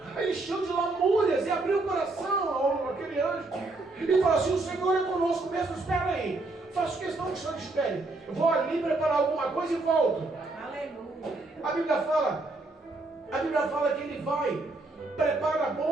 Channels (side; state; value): left; quieter; 3.2 dB